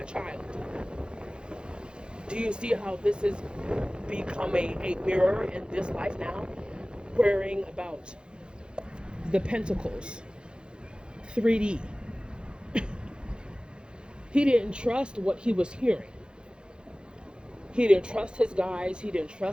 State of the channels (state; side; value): late; left; 0.051 ms